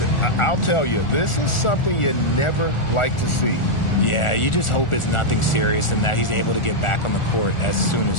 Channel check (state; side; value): late; right; 1.4 ms